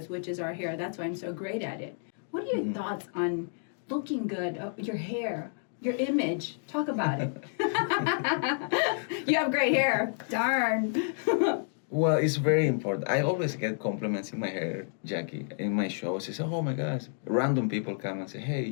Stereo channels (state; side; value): silent; right; digital silence